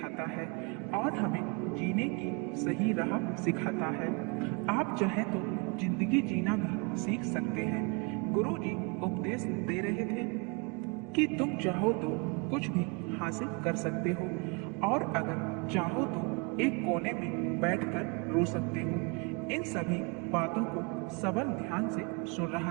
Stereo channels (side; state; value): left; quieter; 31.1 dB